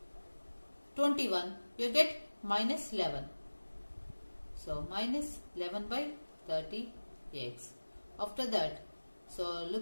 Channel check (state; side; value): inverted; both; correlation -1.00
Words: 21. You get minus 11. So minus 11 by 30x. After that, so